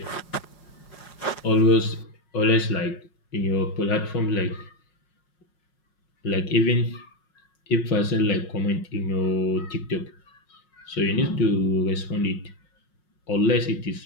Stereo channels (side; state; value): right; late; 5.5 ms